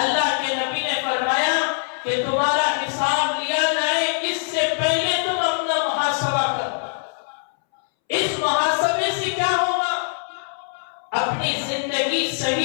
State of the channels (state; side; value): silent; right; 64 dB below the other